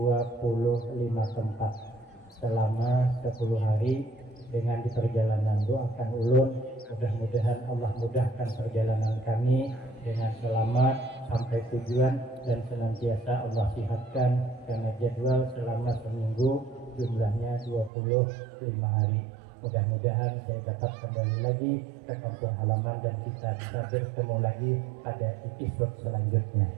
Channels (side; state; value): left; drops out; at 17.9 s